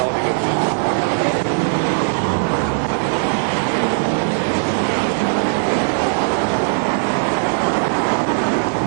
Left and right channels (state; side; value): silent; left; 67 dB below the other